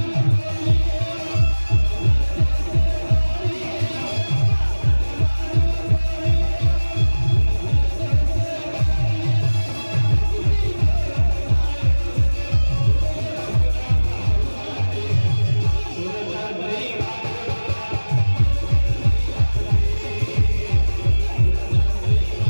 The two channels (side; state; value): both; inverted; correlation -1.00